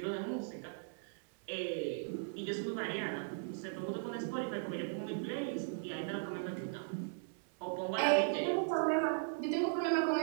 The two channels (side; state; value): left; silent; 53 dB below the other